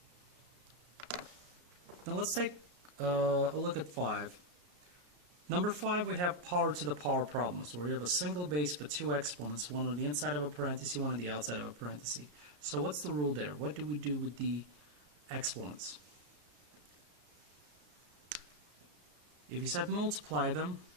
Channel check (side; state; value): left; late; 34 ms